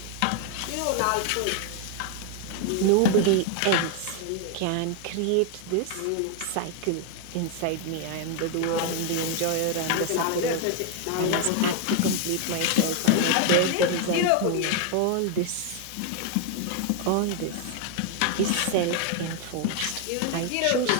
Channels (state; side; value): different; both; correlation 0.01